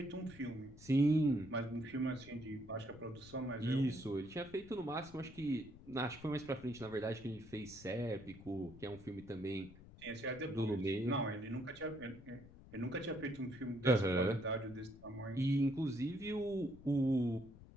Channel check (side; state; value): left; noise; rumble, 18 dB below the sound